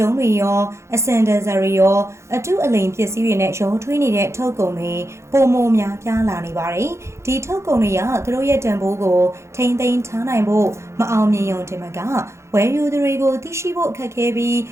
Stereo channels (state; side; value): late; left; 0.13 ms